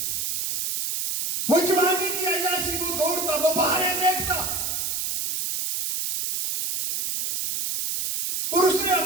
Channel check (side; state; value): right; noise; hiss, 2 dB below the sound